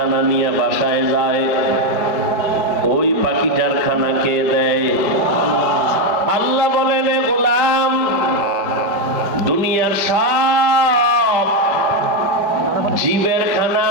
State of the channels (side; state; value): left; late; 5.1 ms